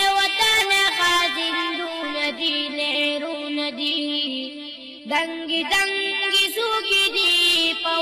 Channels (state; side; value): identical; both; correlation 1.00